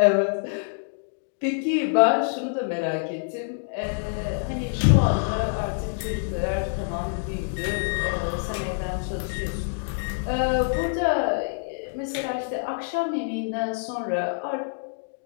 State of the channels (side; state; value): right; silent; digital silence